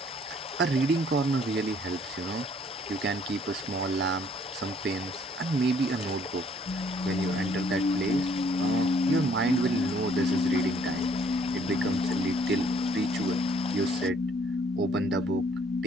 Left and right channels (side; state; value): both; normal; correlation 0.62